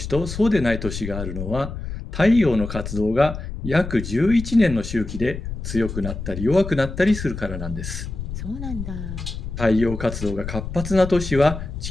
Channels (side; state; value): left; noise; rumble, 7 dB below the sound